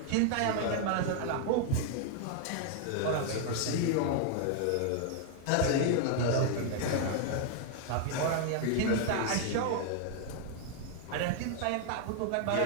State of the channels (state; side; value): different; both; correlation 0.00